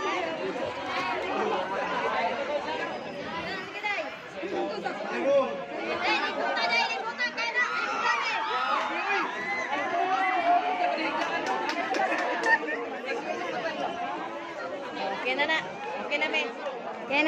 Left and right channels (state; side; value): identical; both; correlation 1.00